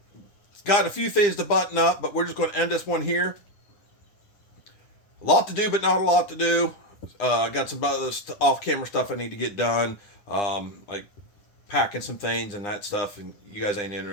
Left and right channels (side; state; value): right; late; 9.8 ms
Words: it's got a few things to button up, but we're just going to end this one here. A lot to do, but not a lot to do. I got some other off-camera stuff I need to get done, like packing some things and that stuff, and you guys ain't